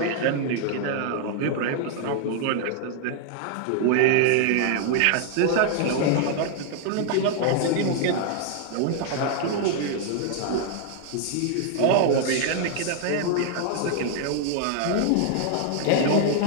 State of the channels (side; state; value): both; different; correlation 0.00